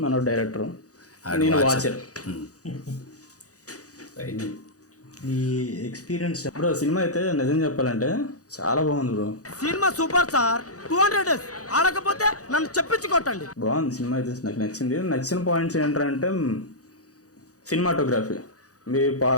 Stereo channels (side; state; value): right; late; 0.67 ms